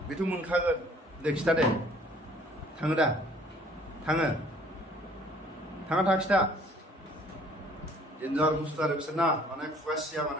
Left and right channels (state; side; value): normal; both; correlation 0.56